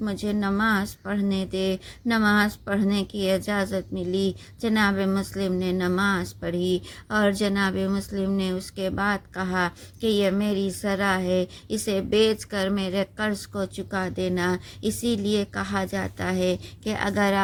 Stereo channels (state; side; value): identical; both; correlation 1.00